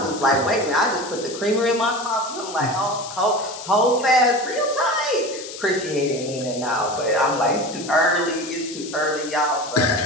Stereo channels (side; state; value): left; noise; hiss, 12 dB below the sound